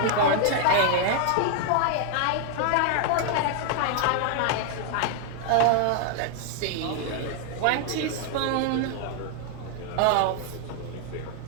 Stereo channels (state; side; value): different; both; correlation 0.00